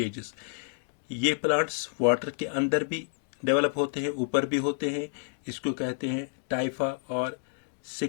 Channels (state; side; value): silent; right; digital silence